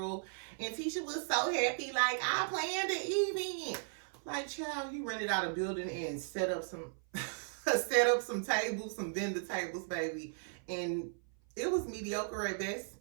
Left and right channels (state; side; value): silent; left; 54 dB below the other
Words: And Tisha was so happy, like, I planned an event. Like, child, you rented out a building and set up some tables, some vendor tables, baby. And it was mediocre at best.